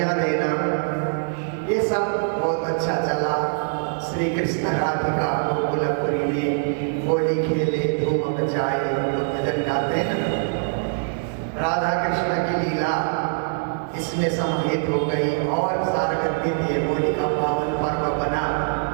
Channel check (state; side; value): silent; left; 61 dB below the other